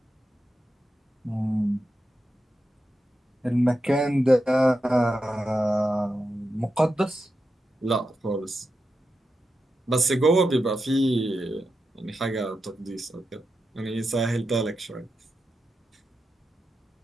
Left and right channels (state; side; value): normal; both; correlation 0.88